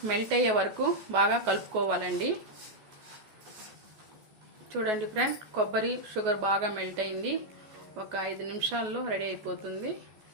మెల్ట్ అయ్యే వరకు బాగా కలుపుకోవాలండి. చూడండి ఫ్రెండ్, కొబ్బరి షుగర్ బాగా మెల్ట్ అయింది. ఒక 5 నిమిషాల్లో రెడీ అయిపోతుంది.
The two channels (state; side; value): late; left; 14 ms